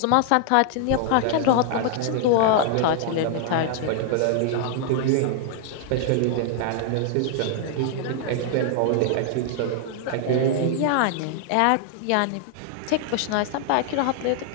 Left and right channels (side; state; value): both; different; correlation 0.00